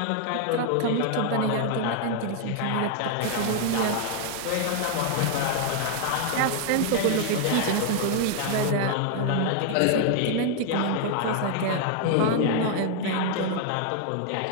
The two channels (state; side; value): different; both; correlation 0.00